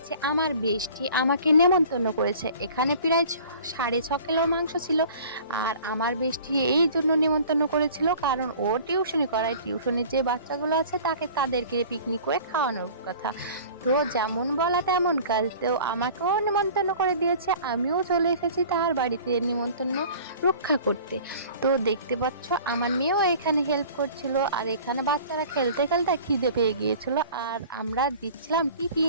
আমার বেস্টি আমাকে নেমন্তন্ন করেছে। এখানে প্রায় 6.5 কিলো মাংস ছিল। আর আমার বেস্টি এই জন্য নেমন্তন্ন করেছিল কারণ ও টিউশনি করায়। টিউশনির যে বাচ্চাগুলো আছে তাদেরকে পিকনিক করে খাওয়ানোর কথা। তো যেমন বলা তেমন কাজ। তো আমাকেও নেমন্তন্ন করে দিয়েছে। আমিও চলে এসেছি তার বাড়িতে নিমন্ত্রণ রক্ষা করতে। তো দেখতে পাচ্ছ আমার মেয়েও এখানে হেল্প করছিল। আর এখানে বাচ্চারা খেলতে খেলতে খিদে পেয়ে গিয়েছিল। আর আমরা দিচ্ছিলাম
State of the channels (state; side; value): inverted; both; correlation -0.45